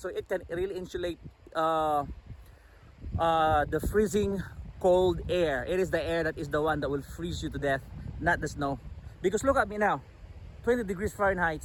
it can really insulate the freezing cold air. It is the air that is the one that will freeze you to death, not the snow. Because look at me now, 20 degrees Fahrenheit.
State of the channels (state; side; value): identical; both; correlation 1.00